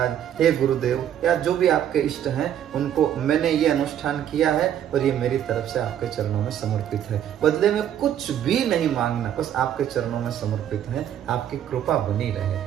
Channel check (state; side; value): quieter; left; 10.2 dB